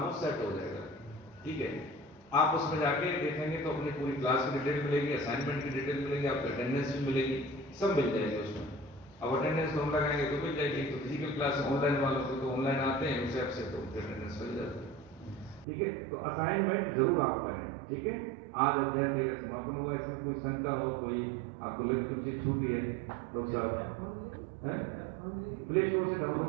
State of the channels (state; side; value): drops out; left; at 15.7 s